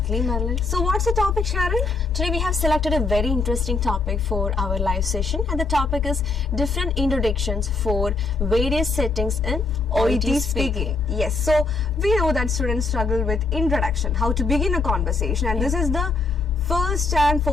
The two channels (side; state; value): right; quieter; 3.8 dB